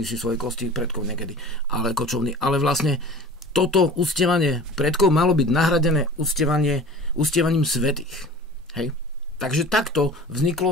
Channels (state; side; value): normal; both; correlation 0.40